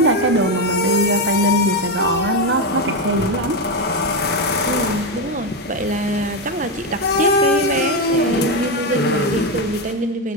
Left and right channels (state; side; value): normal; both; correlation 0.10